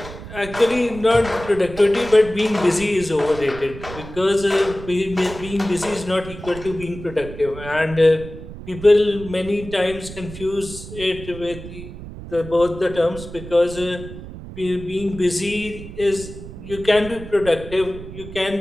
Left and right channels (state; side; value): noise; right; rumble, 13 dB below the sound